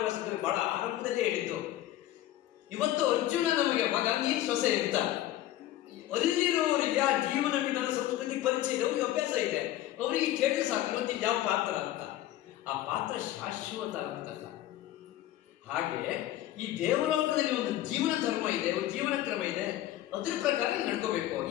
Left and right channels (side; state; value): right; quieter; 14.0 dB